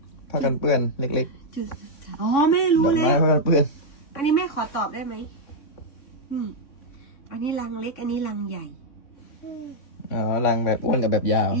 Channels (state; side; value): late; right; 3.6 ms